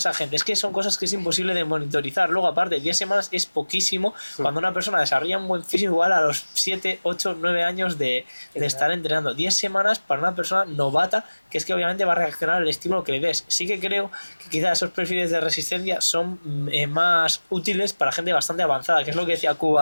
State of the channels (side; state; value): both; inverted; correlation -1.00